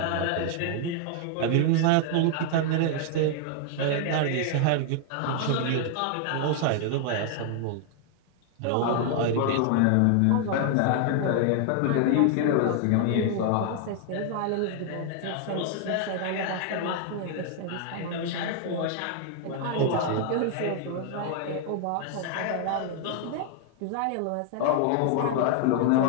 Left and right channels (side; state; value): both; different; correlation 0.00